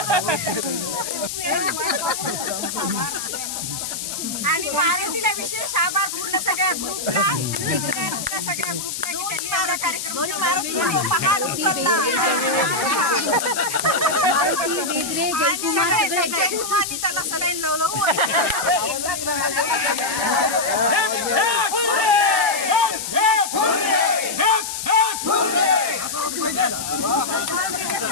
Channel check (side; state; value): left; noise; hiss, 5 dB below the sound